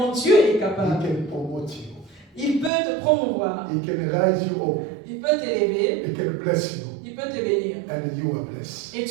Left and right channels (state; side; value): drops out; left; at 2.7 s